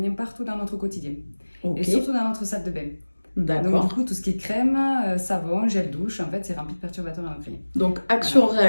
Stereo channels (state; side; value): inverted; both; correlation -1.00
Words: partout dans notre quotidien. Et Ok, surtout dans notre salle de bain. Donc du d'accord. coup tout ce qui est crème, savon, gel douche, en fait c'est rempli de perturbateurs endocriniens. Donc,